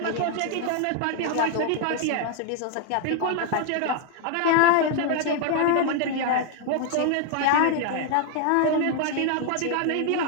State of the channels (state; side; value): different; both; correlation 0.00